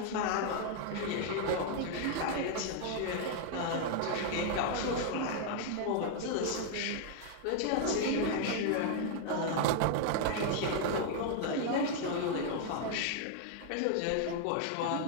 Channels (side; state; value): both; different; correlation 0.00